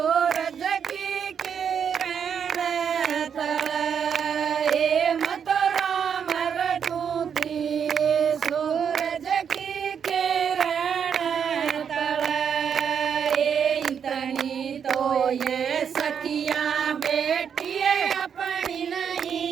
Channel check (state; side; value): quieter; left; 7.5 dB